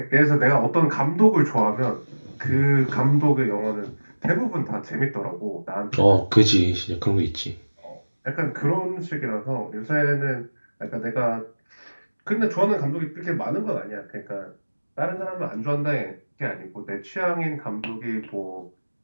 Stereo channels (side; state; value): both; inverted; correlation -1.00